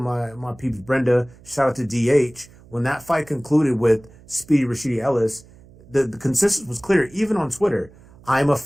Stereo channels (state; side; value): noise; right; hum, 24 dB below the sound